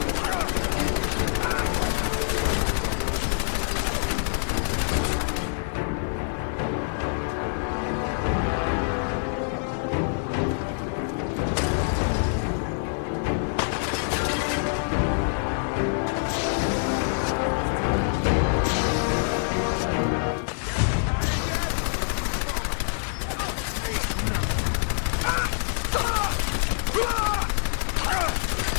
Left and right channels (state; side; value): silent; right; digital silence